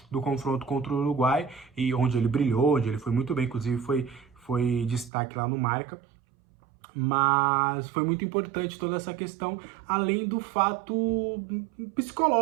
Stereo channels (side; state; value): left; drops out; at 5.1 s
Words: do confronto contra o Uruguai, e onde ele brilhou, onde ele foi muito bem, inclusive foi destaque lá no Marca. Mas foi muito importante toda essa questão, além do fato